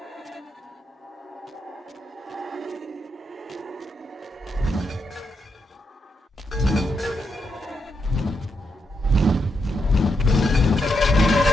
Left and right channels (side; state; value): both; normal; correlation 0.82